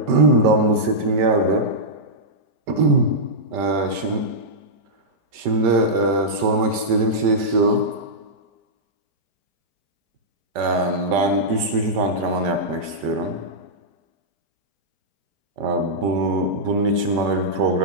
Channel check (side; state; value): left; late; 5.2 ms